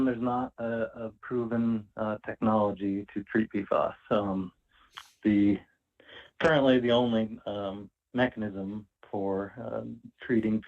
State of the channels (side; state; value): both; identical; correlation 1.00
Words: there's not a proven technology to treat PFAS. Currently the only mechanism for treating